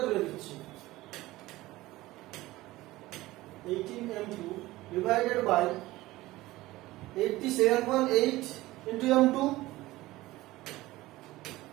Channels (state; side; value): quieter; left; 18.1 dB